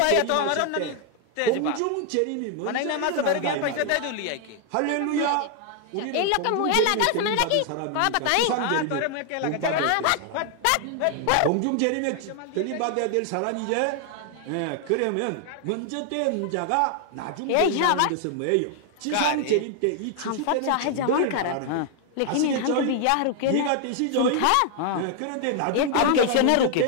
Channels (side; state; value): both; different; correlation 0.00